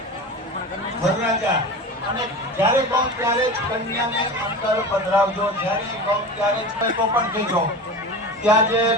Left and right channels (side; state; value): both; normal; correlation 0.30